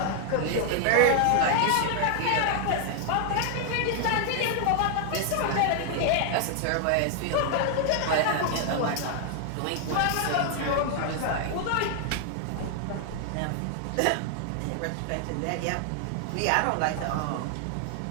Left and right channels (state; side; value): different; both; correlation 0.00